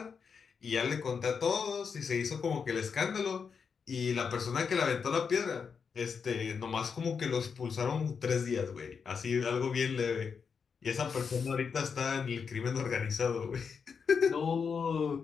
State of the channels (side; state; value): right; quieter; 6.0 dB